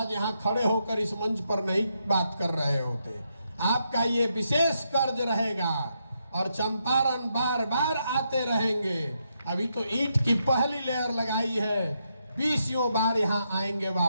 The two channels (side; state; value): both; inverted; correlation -0.81